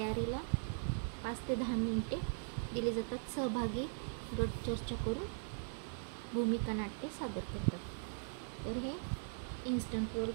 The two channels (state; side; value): silent; left; 51 dB below the other